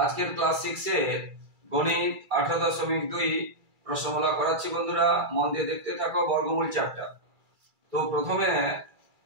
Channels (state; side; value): late; left; 2.3 ms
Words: class 6 এর গণিত 18.2 প্রশ্নমালা করাচ্ছি বন্ধুরা, মন দিয়ে দেখতে থাকো। বর্গমূল চ্যাপ্টার। তো